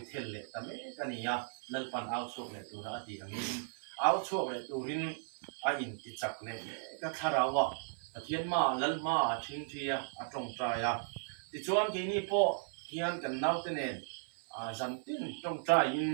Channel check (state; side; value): silent; left; 54 dB below the other